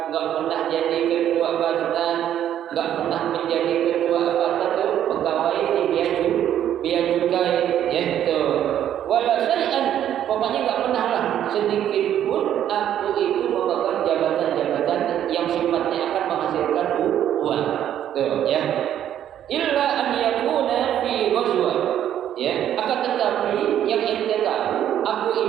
nggak pernah jadi ketua badan, nggak pernah menjadi ketua apa tuh pegawai di bea cukai, yaitu wala syai'an, pokoknya nggak pernah lah sedikit pun aku itu memegang jabatan-jabatan yang sifatnya akan menghasilkan uang, tuh ya. Illa an yakuna fi ghazwa, ya, akan tetapi yang ente tahu, aku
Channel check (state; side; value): quieter; left; 10.7 dB